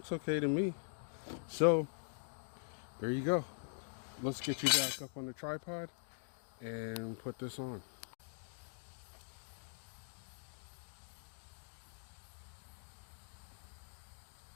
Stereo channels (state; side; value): silent; right; digital silence